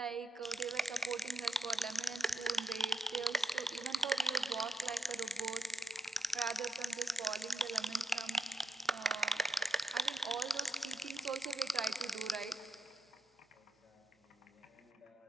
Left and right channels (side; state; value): both; normal; correlation 0.82